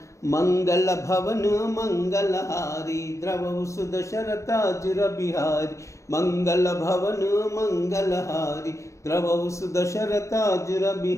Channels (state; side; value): late; right; 0.15 ms